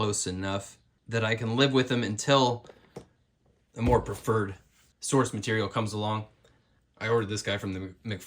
enough that I can live with them until a more preferred source material comes along. I ordered this guy from the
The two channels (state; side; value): identical; both; correlation 1.00